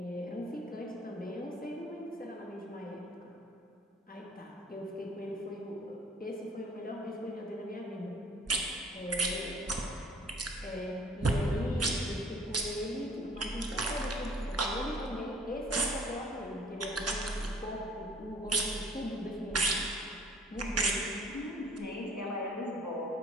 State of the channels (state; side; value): normal; both; correlation 0.53